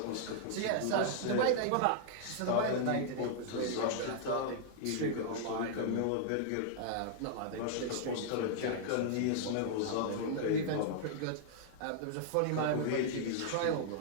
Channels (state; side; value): different; both; correlation -0.01